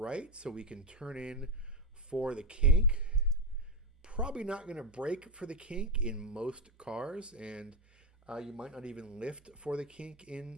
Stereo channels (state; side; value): normal; both; correlation 0.07